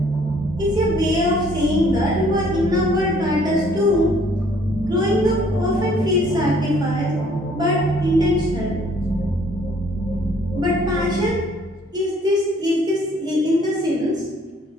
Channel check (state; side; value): normal; both; correlation 0.60